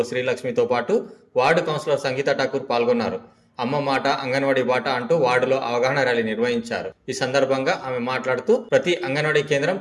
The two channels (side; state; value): both; identical; correlation 1.00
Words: శ్రీలక్ష్మితో పాటు వార్డు కౌన్సిలర్ సంగీత ఠాకూర్ పాల్గొన్నారు. అమ్మ మాట అంగన్వాడీ బాట అంటూ వార్డులో అవగాహన ర్యాలీ నిర్వహించారు. ఈ సందర్భంగా ఆమె మాట్లాడుతూ ప్రతి అంగన్వాడీ కేంద్రం